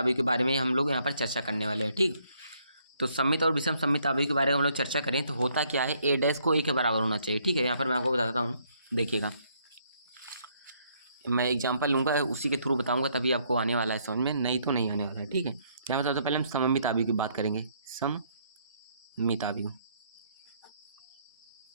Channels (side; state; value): both; inverted; correlation -0.69